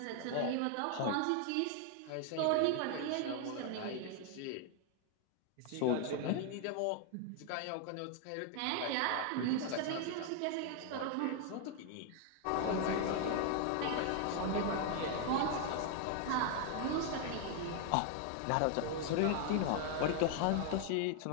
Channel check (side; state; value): both; different; correlation 0.00